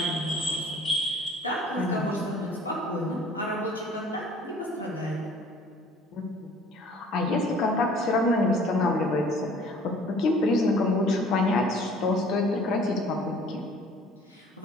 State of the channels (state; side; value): normal; both; correlation 0.51